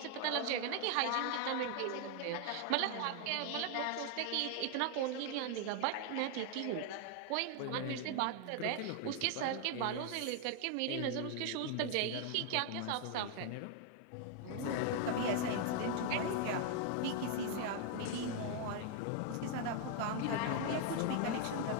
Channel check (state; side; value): different; both; correlation 0.00